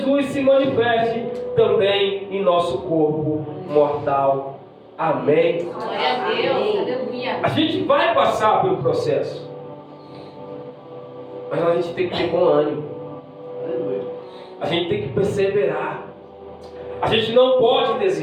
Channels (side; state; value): both; identical; correlation 1.00